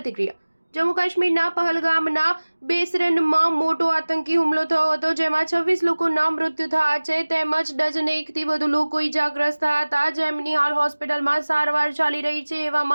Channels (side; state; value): both; inverted; correlation -1.00